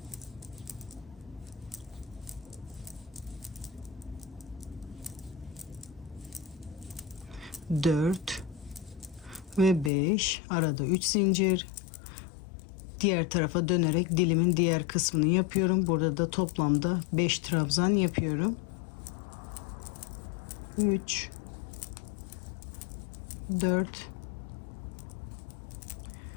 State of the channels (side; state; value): right; drops out; at 9.9 s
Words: Dört ve 5. Arada 3 zincir. Diğer tarafa dönerek dilimin diğer kısmını yapıyorum. Burada da toplamda 5 trabzan yapıyorum. 3, 4